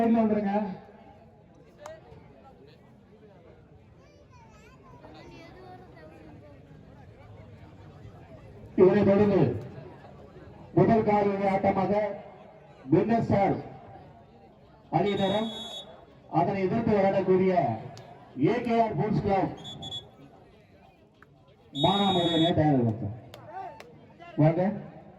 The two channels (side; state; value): both; identical; correlation 1.00